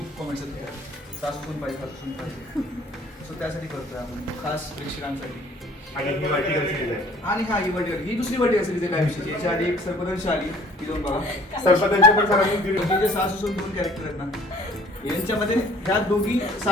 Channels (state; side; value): normal; both; correlation 0.54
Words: कॉमेंट्स आहेत सासू सून पाहिजे, सासू सून पाहिजे. सो त्यासाठी करतोय आपण खास प्रेक्षकांसाठी. आणि ही वाटिका सिरीज आहे. आणि हा ही वर्टिकल, ही दुसरी वर्टिकल सिरीज आहे काय विषयी. याच्या आधी एक सर्पदंश आली, ती जाऊन बघा. सरपंचांचे पण सरांनी दिली. हे जे सासू सून दोन कॅरेक्टर आहेत ना, यांच्यामध्ये ह्या दोघी